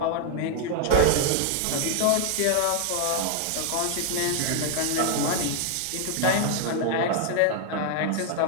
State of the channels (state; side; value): different; both; correlation 0.00